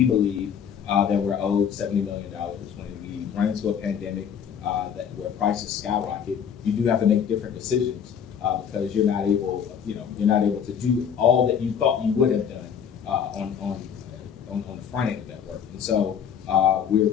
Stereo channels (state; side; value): quieter; right; 7.9 dB